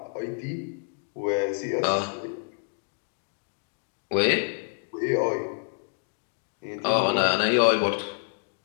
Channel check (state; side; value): silent; right; 59 dB below the other